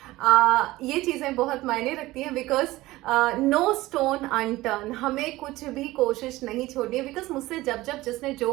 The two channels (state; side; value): quieter; left; 18.2 dB